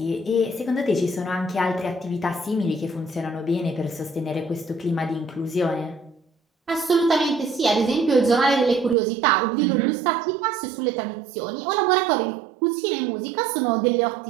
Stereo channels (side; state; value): left; drops out; at 9.0 s